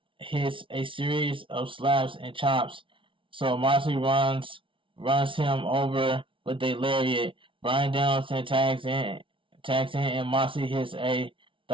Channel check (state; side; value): late; left; 0.25 ms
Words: hits a series of slaps and chops, so Moxley runs him over with a lariat. Bryan Danielson tags in, and Moxley hits a